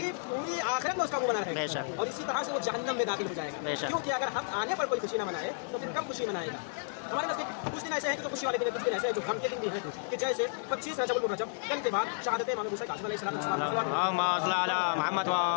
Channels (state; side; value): silent; right; digital silence